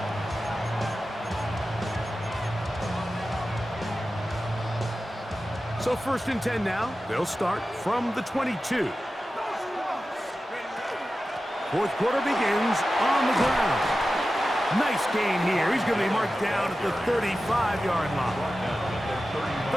So first and 10 now. They'll start from the 22. Fourth quarter begins on the ground. Nice gain here. He's going to be marked down at the 35-yard line.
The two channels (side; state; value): both; normal; correlation 0.94